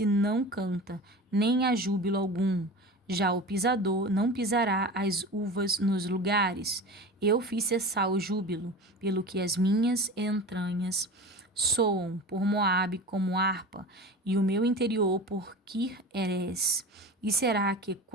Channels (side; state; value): both; normal; correlation 0.33